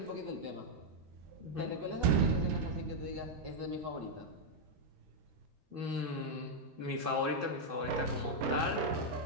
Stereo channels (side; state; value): left; late; 13 ms